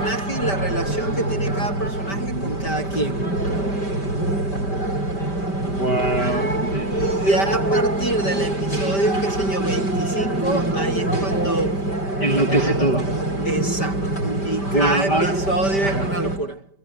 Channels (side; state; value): right; late; 5.1 ms